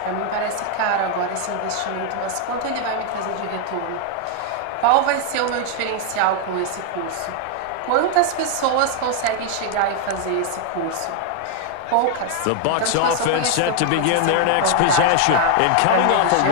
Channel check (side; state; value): both; different; correlation 0.00